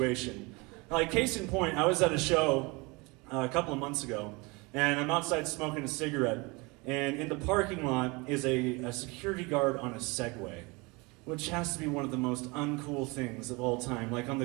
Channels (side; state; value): left; quieter; 26.4 dB